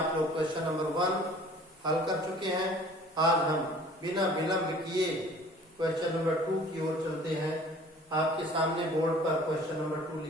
लोग क्वेश्चन नंबर 1 हल कर चुके हैं। आज हम बिना विलंब किए क्वेश्चन नंबर 2 की ओर चलते हैं। आपके सामने बोर्ड पर क्वेश्चन नंबर 2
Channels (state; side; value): normal; both; correlation 0.49